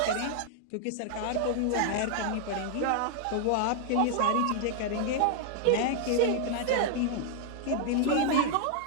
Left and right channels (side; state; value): both; different; correlation 0.00